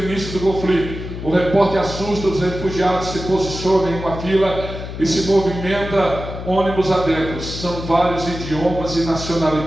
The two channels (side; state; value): left; noise; hum, 9 dB below the sound